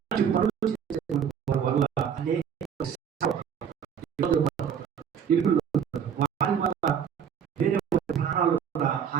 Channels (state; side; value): quieter; left; 7.9 dB